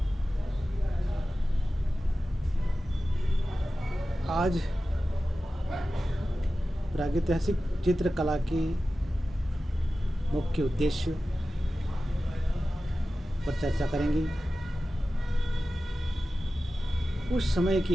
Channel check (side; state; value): both; normal; correlation 0.94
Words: आज प्रागैतिहासिक चित्रकला के मुख्य उद्देश्य पर चर्चा करेंगे। उस समय